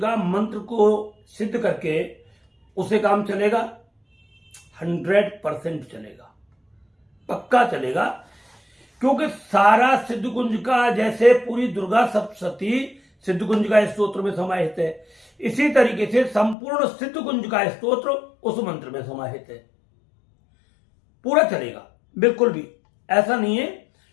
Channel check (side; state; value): right; drops out; at 16.6 s